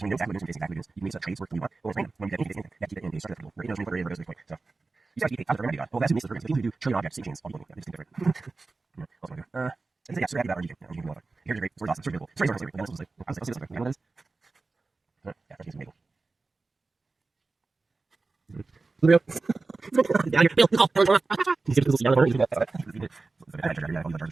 when you know exactly what it is, exactly what it is, you can make trades work the way you want. Or it's random. When you get anything, you have to keep it in a starter field. Right? You know, what goes this way. So you start to keep out of the well, that's who makes the programs. The people who do trillion objects, same chains, all people. Yeah, they just think different. Yeah. Also, yeah, so happy about Rngking. Rngking is awesome. Here's great. It's awesome. It's really cool. Stories are great. And also, like, I'll see this. You know what it is? Yeah, Rngking's amazing. Blue. Down here. Bill. He's going to see down the corner. That's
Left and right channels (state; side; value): quieter; left; 3.8 dB